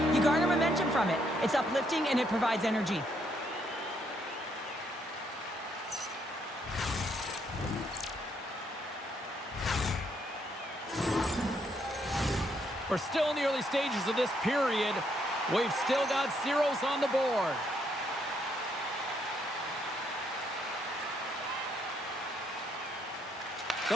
You garner momentum from it. It's uplifting and it provides energy. We're still in the early stages of this period. We've still got zeros on the board.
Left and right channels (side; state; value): both; normal; correlation 0.73